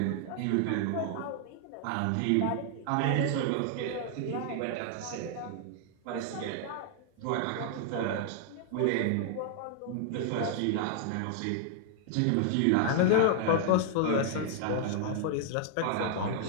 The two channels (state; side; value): different; both; correlation 0.00